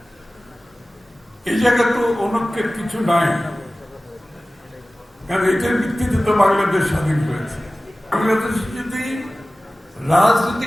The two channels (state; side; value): normal; both; correlation 0.97